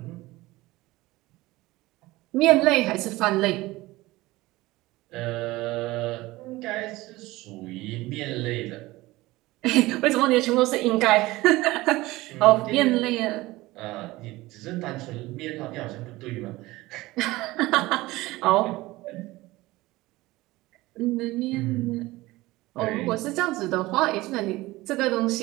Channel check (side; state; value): left; quieter; 19.4 dB